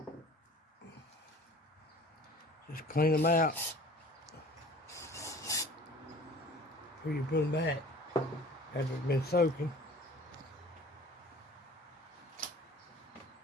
Just clean them out before you put them back after it's been soaking.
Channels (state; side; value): normal; both; correlation 0.45